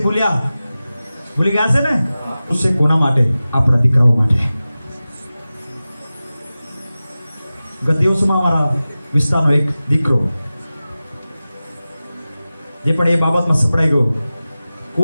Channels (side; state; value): both; inverted; correlation -0.96